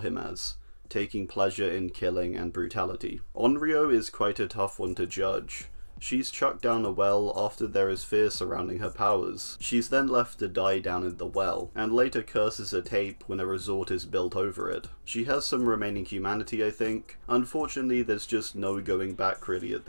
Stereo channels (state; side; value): inverted; both; correlation -1.00